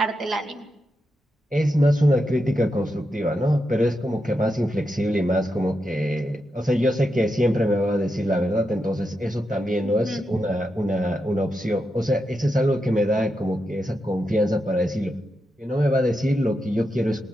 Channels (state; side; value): normal; both; correlation 0.86